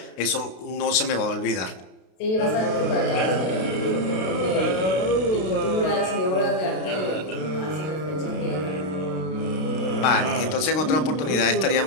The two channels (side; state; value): right; late; 32 ms